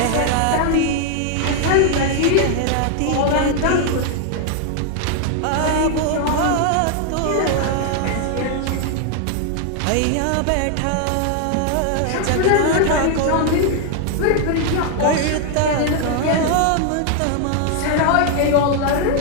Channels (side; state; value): both; different; correlation 0.00